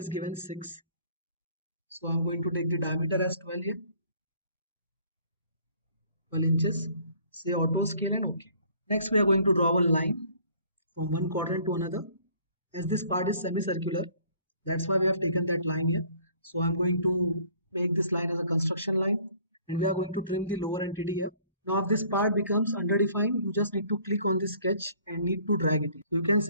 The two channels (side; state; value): both; inverted; correlation -0.57